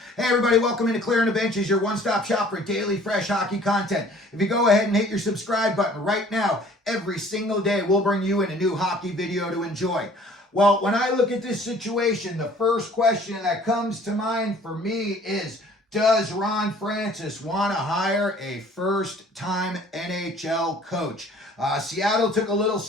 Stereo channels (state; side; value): normal; both; correlation 0.53